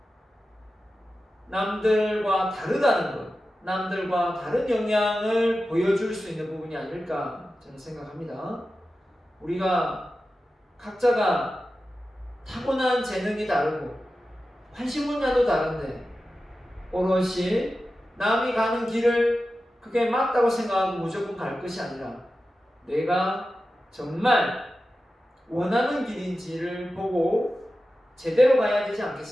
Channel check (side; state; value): both; normal; correlation 0.93